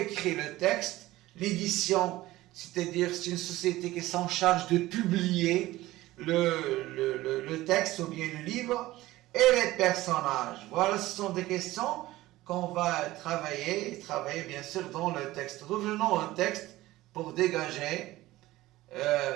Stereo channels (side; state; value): left; quieter; 17.2 dB